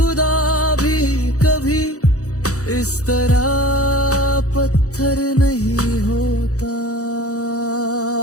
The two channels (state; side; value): late; right; 0.66 ms